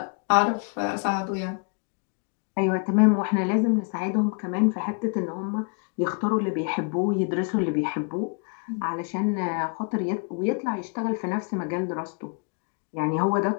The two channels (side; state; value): right; quieter; 38.3 dB